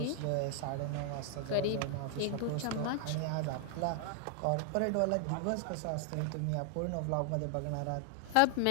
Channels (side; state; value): both; different; correlation 0.00